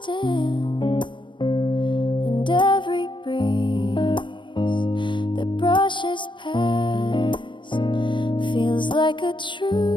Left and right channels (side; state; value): right; late; 0.23 ms